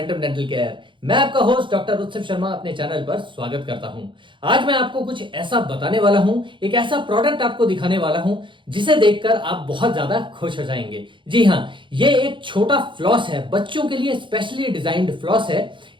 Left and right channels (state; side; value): late; left; 0.24 ms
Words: dental care. मैं आपका होस्ट डॉक्टर उत्सव शर्मा अपने चैनल पर स्वागत करता हूं। आज मैं आपको कुछ ऐसा बताने वाला हूं, एक ऐसा प्रोडक्ट आपको दिखाने वाला हूं जिसे देखकर आप बहुत ज्यादा खुश हो जाएंगे। जी हां, ये एक छोटा फ्लॉस है, बच्चों के लिए स्पेशली डिजाइंड फ्लॉस है।